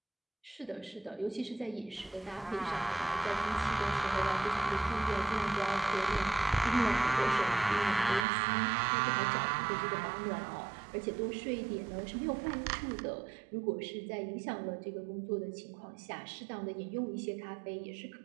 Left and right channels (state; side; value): drops out; left; at 8.2 s